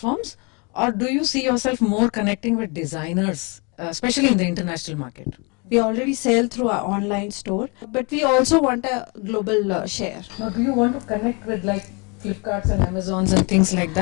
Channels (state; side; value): quieter; right; 31.5 dB